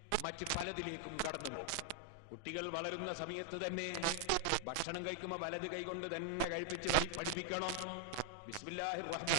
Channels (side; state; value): both; different; correlation 0.00